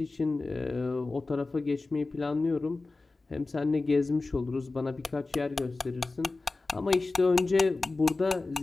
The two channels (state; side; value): quieter; right; 3.5 dB